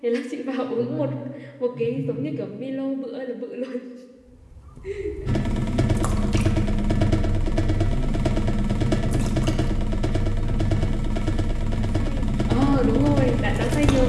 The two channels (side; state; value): both; identical; correlation 1.00